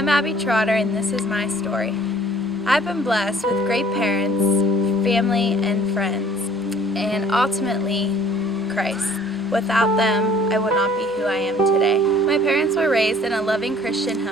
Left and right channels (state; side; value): normal; both; correlation 0.54